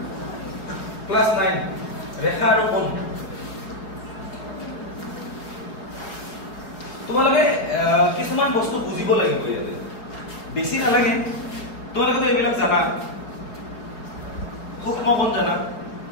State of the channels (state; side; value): late; right; 4.6 ms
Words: ক্লাস 9 ৰেখা আৰু কোণ তোমালোকে কিছুমান বস্তু বুজিব লাগিব ইয়াতে বেছি নালাগে তোমালোকে তো এইবিলাক জানা সূক্ষ্ম কোণ জানা